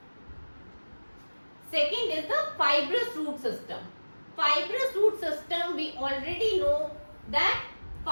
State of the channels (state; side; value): inverted; both; correlation -1.00